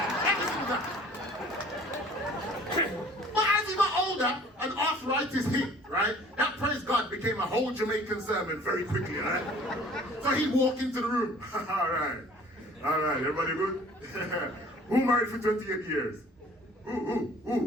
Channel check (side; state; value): both; normal; correlation 0.51